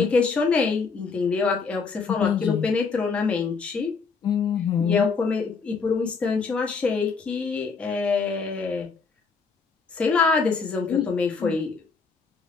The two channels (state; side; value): quieter; right; 4.9 dB